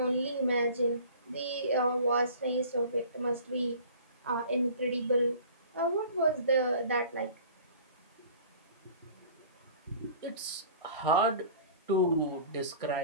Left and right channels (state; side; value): inverted; both; correlation -0.46